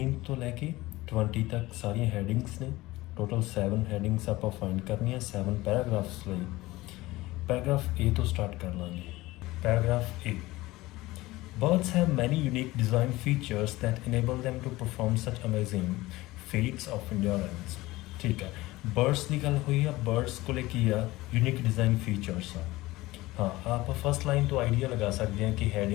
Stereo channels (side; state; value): right; quieter; 19.1 dB